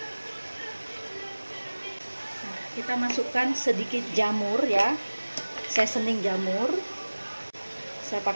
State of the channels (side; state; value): both; inverted; correlation -1.00